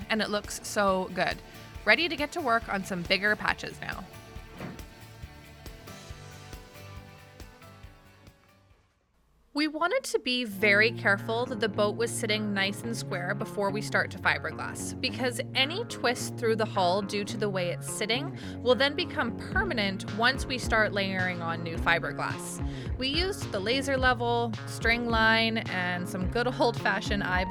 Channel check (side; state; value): both; identical; correlation 1.00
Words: and it looks so good. Ready to get to work on some bigger patches now. We wanted to be very careful that the boat was sitting nice and square before we start to fiberglass, because any twist through the hull due to the way it's sitting will then become permanent once we start layering on new fiberglass. We used the laser level, string line, and some good old-fashioned